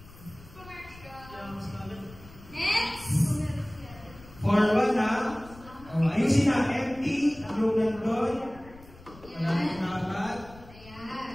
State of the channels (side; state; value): left; noise; rumble, 20 dB below the sound